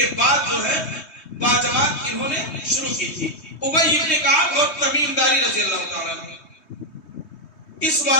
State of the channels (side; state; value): right; late; 3.2 ms